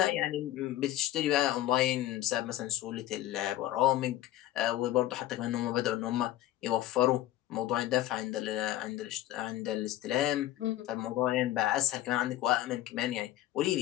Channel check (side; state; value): right; quieter; 14.1 dB